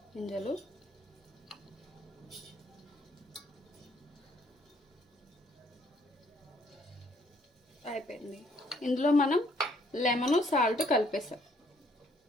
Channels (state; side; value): normal; both; correlation 0.66